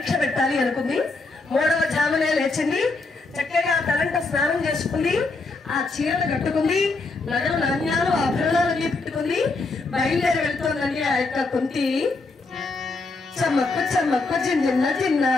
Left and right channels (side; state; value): right; quieter; 3.6 dB